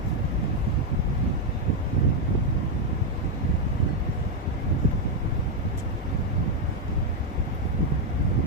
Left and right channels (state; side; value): normal; both; correlation 0.02